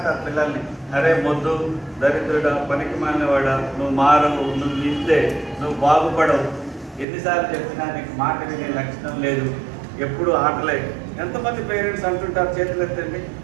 పిల్లల్ని. అరే మొద్దు, దరిద్రుడా, పనికి మాలినవాడా, నువ్వు మారవు, నువ్వు ఇంతే, నువ్వు బాగుపడవు, ఎన్నిసార్లు చెప్పినా నీకు మాట వినే లక్షణం లేదు, ఎప్పుడు ఆటలే. ఎంతమంది పేరెంట్స్ అంటుంటారు, చేతులు ఎత్తండి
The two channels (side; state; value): left; drops out; at 7.1 s